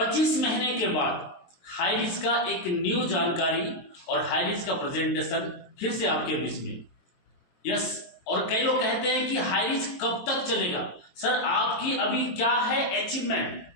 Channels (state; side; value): late; right; 23 ms